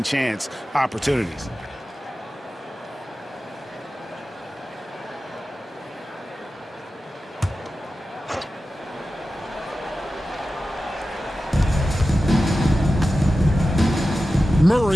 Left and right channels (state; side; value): normal; both; correlation 0.94